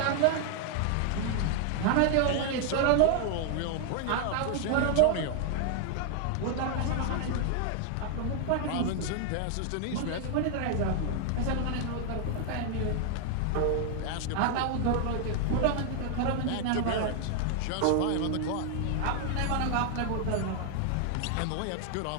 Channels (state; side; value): different; both; correlation 0.00